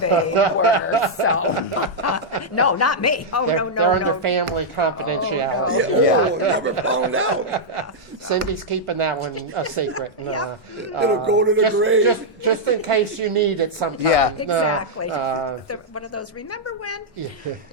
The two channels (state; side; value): normal; both; correlation -0.06